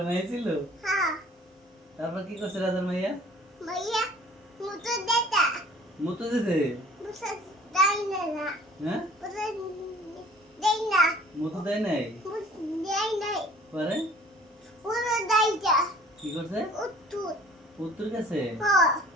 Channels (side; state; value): both; normal; correlation 0.51